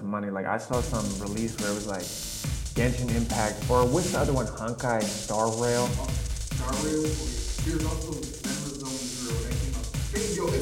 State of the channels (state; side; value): identical; both; correlation 1.00